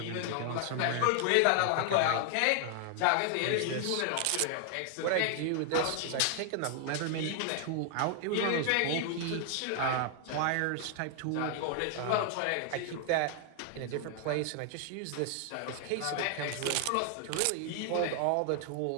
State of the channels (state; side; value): different; both; correlation 0.00